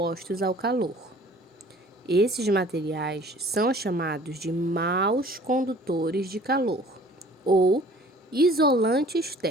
ao calor. Esses materiais são chamados de maus condutores de calor ou isolantes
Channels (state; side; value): normal; both; correlation 0.50